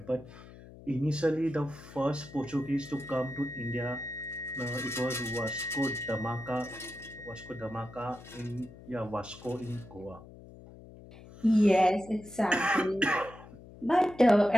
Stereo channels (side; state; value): left; noise; hum, 18 dB below the sound